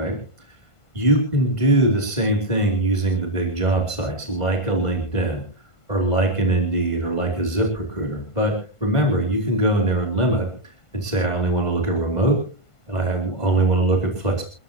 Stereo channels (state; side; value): late; right; 1.5 ms